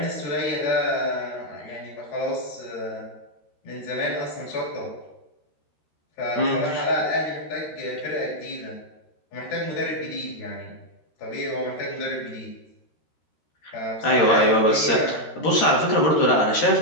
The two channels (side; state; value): right; late; 13 ms